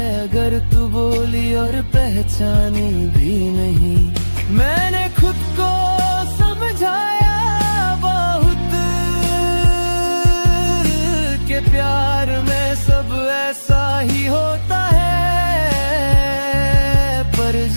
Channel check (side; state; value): both; inverted; correlation -1.00